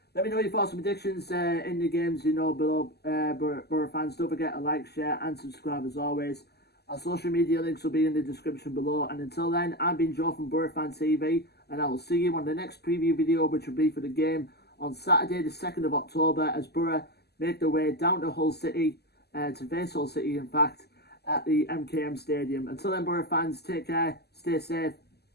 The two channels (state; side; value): late; right; 0.47 ms